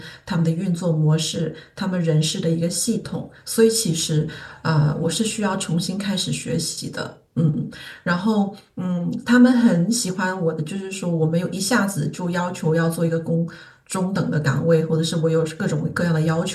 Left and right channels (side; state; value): both; identical; correlation 1.00